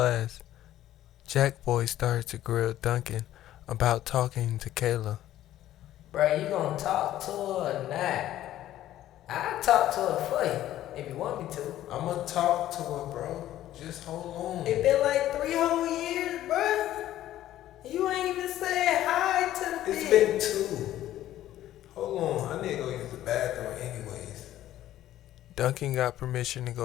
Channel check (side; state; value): right; quieter; 13.3 dB